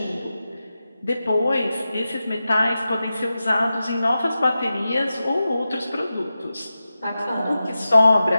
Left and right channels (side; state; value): both; inverted; correlation -0.93